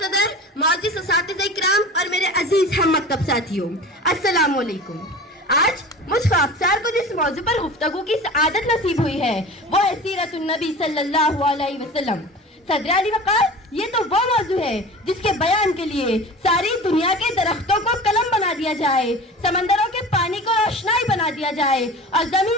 معزز اساتذہ کرام اور میرے عزیز ہم مکتب ساتھیوں، السلام علیکم. آج مجھ خاکسار کو جس موضوع پر گفتگو کی سعادت نصیب ہوئی ہے وہ ہے سیرت النبی صلی اللہ علیہ وسلم. صدر علی وقار، یہ تو وہ موضوع ہے جس کے بیان کے لیے ساری دنیا کے درختوں کو قلم بنا دیا جائے، سمندروں کے پانی کو روشنائی بنا دیا جائے اور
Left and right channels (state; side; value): normal; both; correlation 0.36